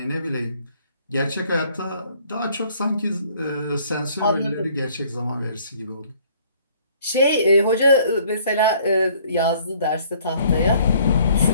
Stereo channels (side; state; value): both; inverted; correlation -0.59